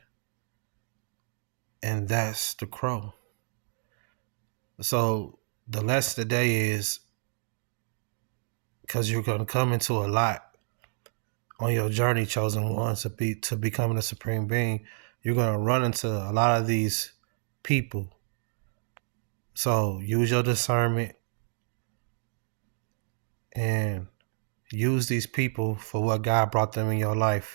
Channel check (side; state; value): left; silent; digital silence